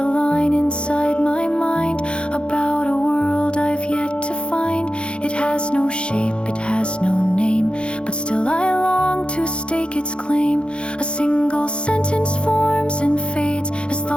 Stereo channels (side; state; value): right; late; 0.056 ms